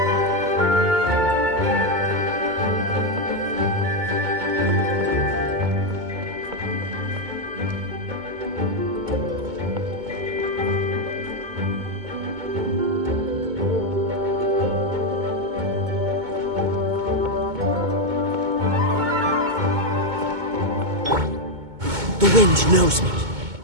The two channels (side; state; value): left; late; 2.2 ms